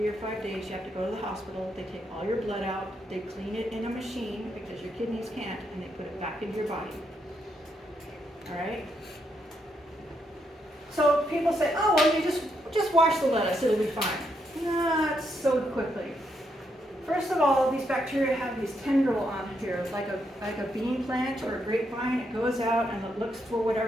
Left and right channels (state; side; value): normal; both; correlation 0.78